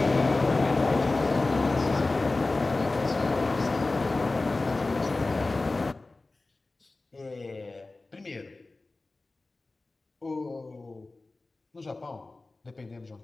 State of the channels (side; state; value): right; quieter; 3.3 dB